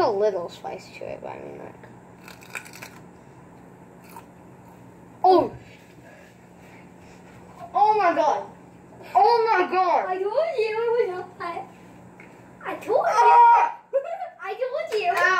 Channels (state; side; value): identical; both; correlation 1.00